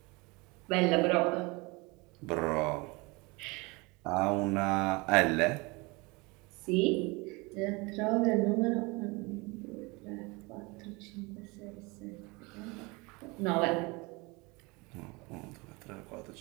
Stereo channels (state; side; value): quieter; left; 26.1 dB